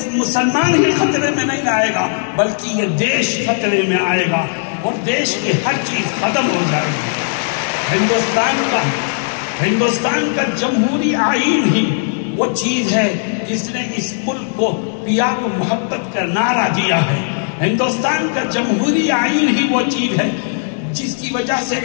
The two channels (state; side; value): silent; right; digital silence